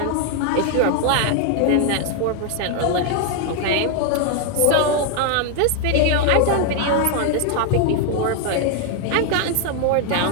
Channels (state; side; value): different; both; correlation 0.00